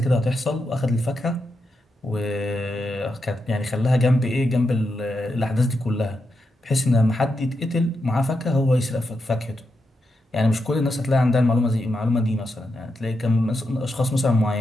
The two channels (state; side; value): normal; both; correlation 0.85